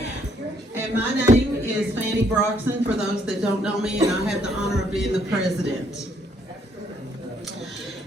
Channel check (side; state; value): both; normal; correlation 0.69